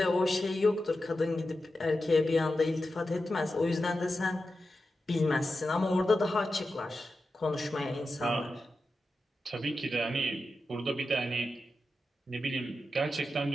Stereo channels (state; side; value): normal; both; correlation 0.91